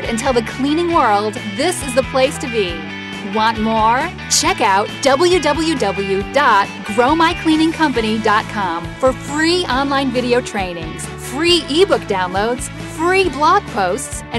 and tell the cleaning world this is the place to be. Want more? Check out www.growmycleaningcompany.com for free online video trainings, free ebook downloads, free blog posts,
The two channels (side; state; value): both; identical; correlation 1.00